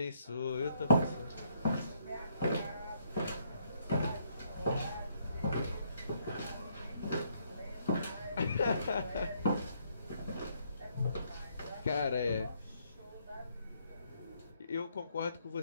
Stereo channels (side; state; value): both; inverted; correlation -0.70